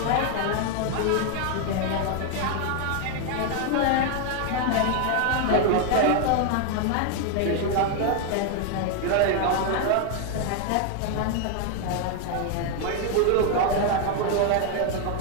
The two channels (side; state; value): both; different; correlation 0.01